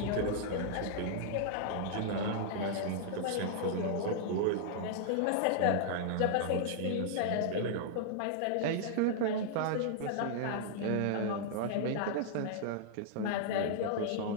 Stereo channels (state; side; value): different; both; correlation -0.01